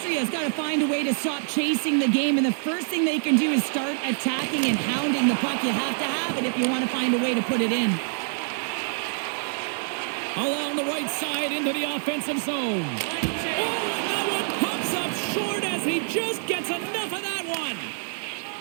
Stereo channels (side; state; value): left; silent; 58 dB below the other